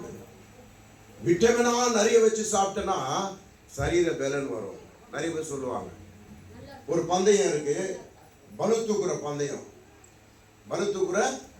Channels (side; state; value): both; identical; correlation 1.00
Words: விட்டமினா நிறைய வச்சு சாப்பிட்டனா சரீர பலன் வரும். நிறைய பேர் சொல்லுவாங்க. ஒரு பந்தயம் இருக்கு, பளு தூக்குற பந்தயம்